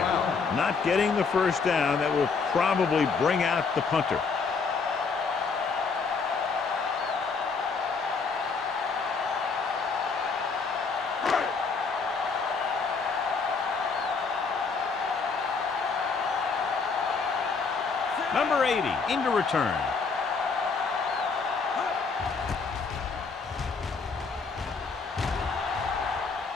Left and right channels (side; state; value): right; quieter; 4.9 dB